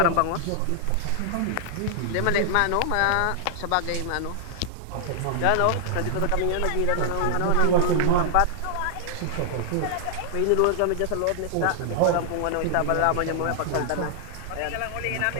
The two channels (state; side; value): different; both; correlation -0.01